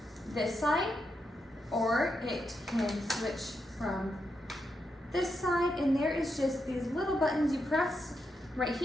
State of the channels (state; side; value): normal; both; correlation 0.84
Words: this side, or it can switch from this side, and there is just these little buttons you press right